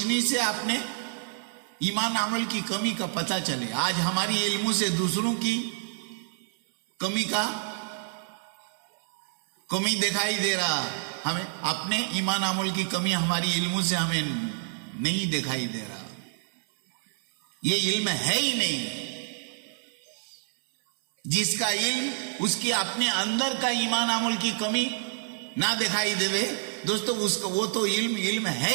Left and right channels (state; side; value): silent; left; 59 dB below the other